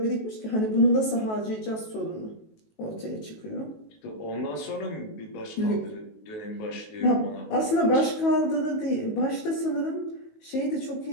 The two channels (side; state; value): right; late; 19 ms